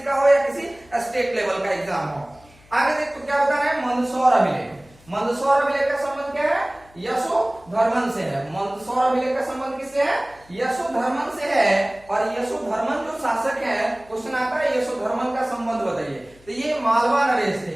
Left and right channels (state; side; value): noise; left; hum, 27 dB below the sound